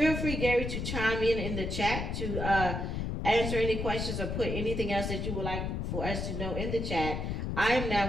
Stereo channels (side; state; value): left; noise; rumble, 3 dB below the sound